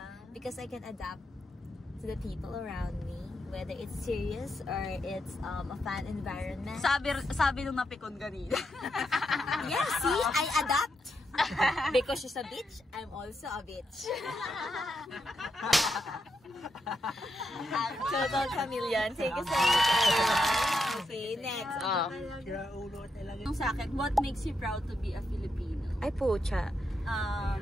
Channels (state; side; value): normal; both; correlation 0.83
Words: Because I can adapt to the people around me, whether it's serious or it's a fun environment. Sabi nung napikon kanina. Yeah, see, I adapt. Because she's a bitch, I'm also a bitch. Total chameleon. Thank you so much, everyone. Okay, next. Yung sa akin, what makes you proud to be a Filipino? Ay, pucha.